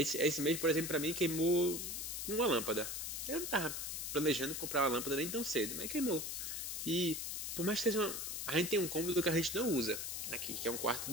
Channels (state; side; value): noise; left; hiss, 4 dB below the sound